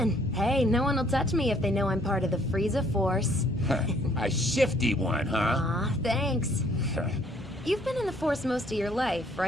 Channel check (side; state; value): both; normal; correlation 0.63